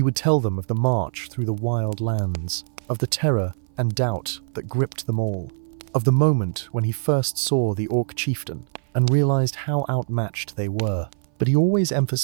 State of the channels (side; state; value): left; silent; 59 dB below the other